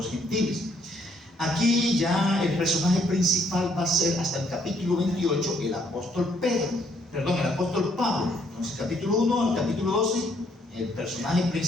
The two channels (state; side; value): normal; both; correlation 0.68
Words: gentiles. Aquí ya el personaje principal va a ser, hasta el capítulo 28, el apóstol Pablo. Entonces, capítulo 1 al capítulo 12, el personaje